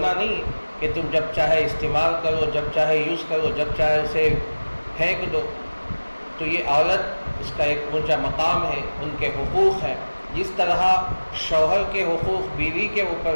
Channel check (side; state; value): both; inverted; correlation -1.00